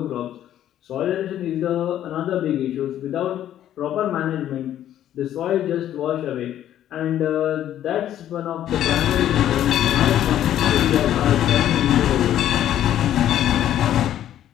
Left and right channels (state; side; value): quieter; right; 11.6 dB